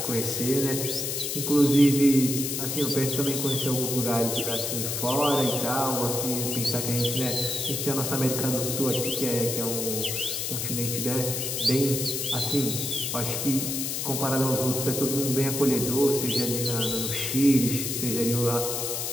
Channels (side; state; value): left; noise; hiss, 2 dB below the sound